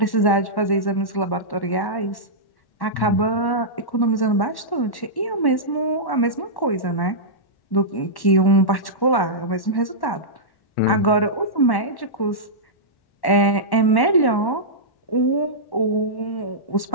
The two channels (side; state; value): right; late; 1.1 ms